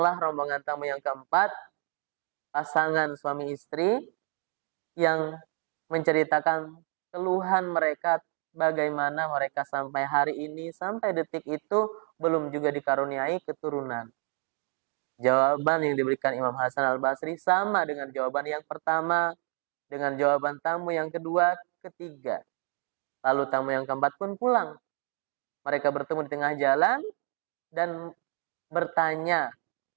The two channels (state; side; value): quieter; left; 38.9 dB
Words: rombongan tamu yang keempat, pasangan suami istri yang menceritakan keluhan mereka, bagaimana mereka sampai hari ini, sampai detik itu belum juga dikaruniai keturunan. Jawaban yang diberikan Imam Hasan Al-Basri sama dengan jawaban yang pertama, dengan jawaban tamu yang kedua, ketiga. Lalu tamu yang keempat pun pulang. Mereka bertemu di tengah jalan dan bertanya,